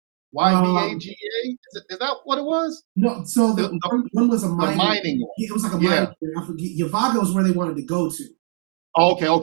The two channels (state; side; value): silent; left; 65 dB below the other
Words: YVAGA? Is that what it was? No, so one was a mining one. It was like a mining. I forget. Yavaga was where they wanted to go to.